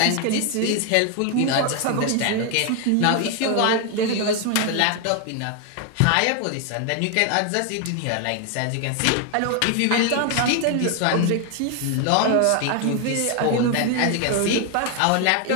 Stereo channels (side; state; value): both; different; correlation 0.01